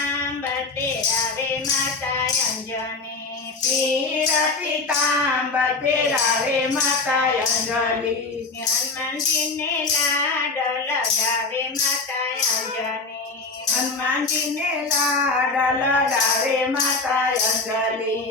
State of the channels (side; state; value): right; quieter; 3.9 dB